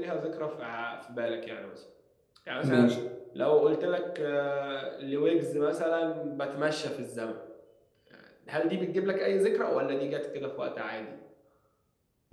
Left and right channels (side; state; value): both; identical; correlation 1.00